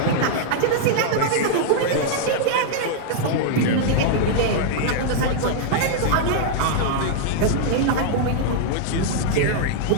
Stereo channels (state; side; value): different; both; correlation -0.01